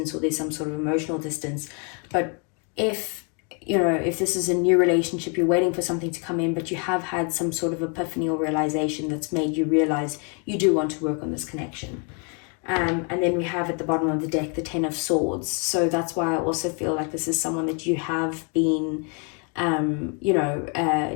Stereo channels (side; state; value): right; quieter; 37.4 dB